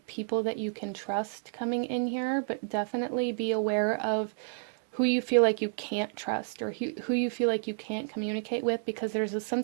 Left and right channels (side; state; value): left; silent; digital silence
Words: people that you can trust coming in here, but definitely be aware of who you feel like you can't trust, or who you feel like you can't communicate with, because there's a